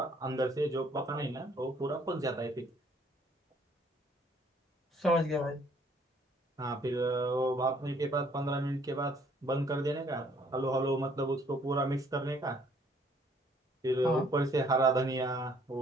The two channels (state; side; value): normal; both; correlation 0.62